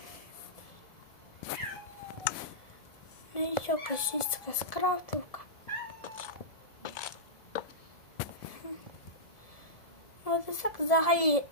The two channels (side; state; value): right; late; 1.7 ms